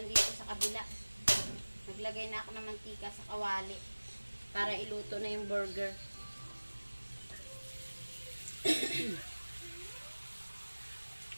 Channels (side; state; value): both; inverted; correlation -1.00